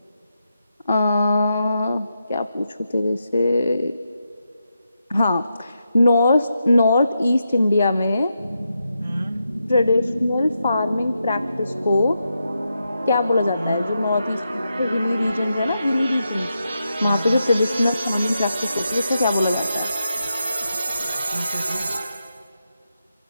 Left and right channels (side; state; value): both; inverted; correlation -0.86